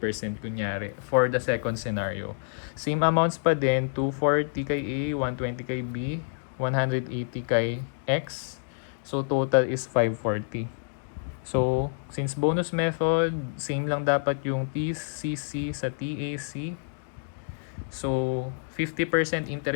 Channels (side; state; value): right; silent; digital silence